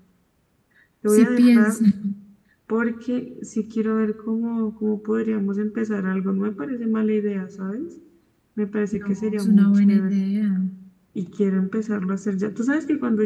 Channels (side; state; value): both; identical; correlation 1.00